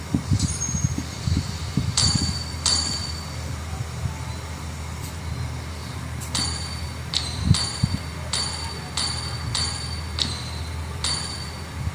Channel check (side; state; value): both; identical; correlation 1.00